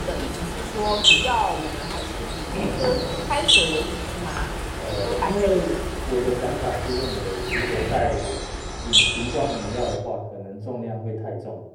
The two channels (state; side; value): identical; both; correlation 1.00